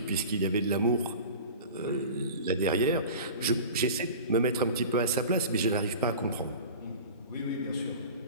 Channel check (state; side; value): inverted; both; correlation -0.36